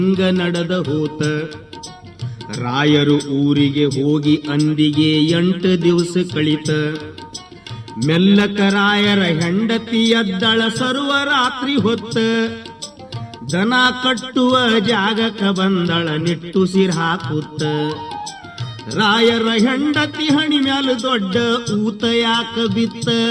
ನಡೆದ ಹೋತ, ರಾಯರು ಊರಿಗೆ ಹೋಗಿ ಅಂದಿಗೆ 8 ದಿವಸ ಕಳಿತ. ಮೆಲ್ಲಕ ರಾಯರ ಹೆಂಡತಿ ಎದ್ದಳ ಸರ್ವರಾತ್ರಿ ಹೊತ್ತ, ದನ ಕಟ್ಟುವ ಜಾಗಕ್ಕ ಬಂದಳ ನಿಟ್ಟುಸಿರ್ ಹಾಕುತ್ತ. ರಾಯರ ಹೆಂಡತಿ ಹಣಿ ಮ್ಯಾಲ ದೊಡ್ಡ ಊತ ಯಾಕ ಬಿತ್ತ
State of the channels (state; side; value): identical; both; correlation 1.00